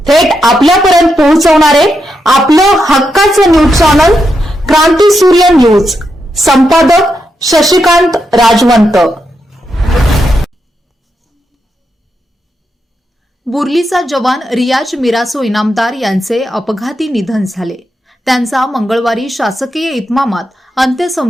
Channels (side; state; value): both; normal; correlation 0.84